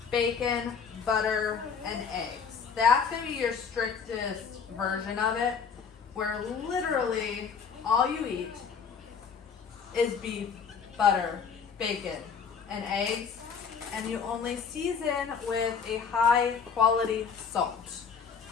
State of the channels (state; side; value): quieter; right; 6.3 dB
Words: bacon, butter, and eggs. That's going to be your strictest version of it, where literally all you eat is beef, butter, bacon, and eggs, and you only season with a high quality salt.